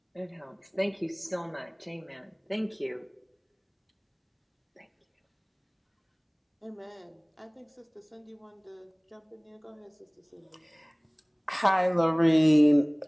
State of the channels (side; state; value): both; identical; correlation 1.00